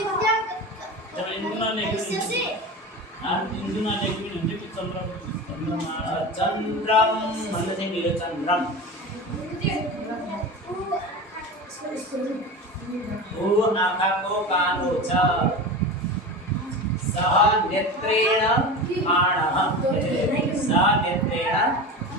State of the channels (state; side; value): normal; both; correlation 0.28